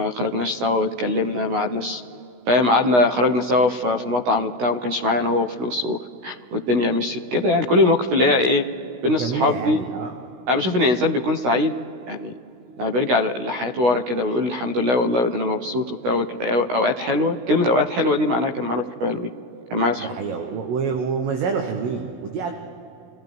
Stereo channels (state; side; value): late; left; 16 ms